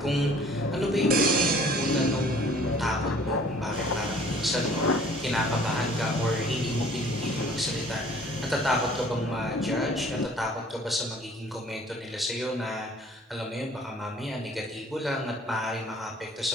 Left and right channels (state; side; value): normal; both; correlation 0.53